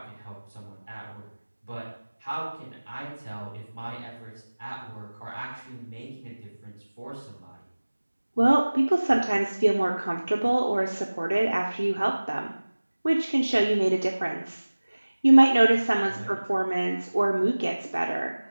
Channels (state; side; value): inverted; both; correlation -1.00